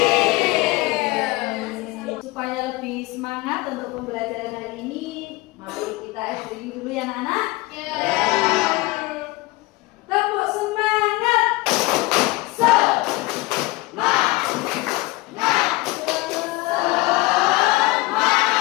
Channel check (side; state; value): right; quieter; 21.5 dB